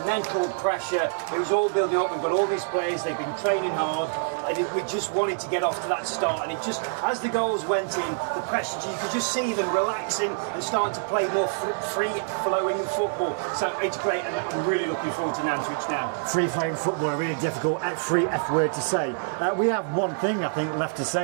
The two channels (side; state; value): left; silent; 61 dB below the other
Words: mental pressure. It was all building up. We've got all these players, they've been training hard, and we just wanted to get off to that start, and it just, as the goals went in, the pressure, you could just see them relaxing and starting to play more free-flowing football. So it's great, and I'm really looking forward to Nantwich now. Free-flowing football, a really difficult free F word to say. We have one thing, I think, left to